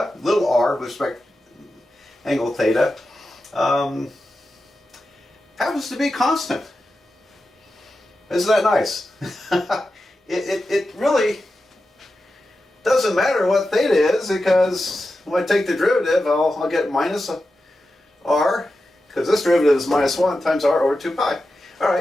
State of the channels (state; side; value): normal; both; correlation 0.91